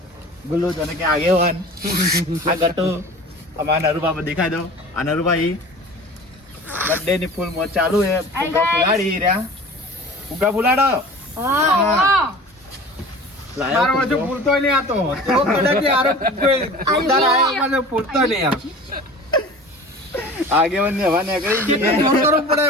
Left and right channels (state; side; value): normal; both; correlation 0.40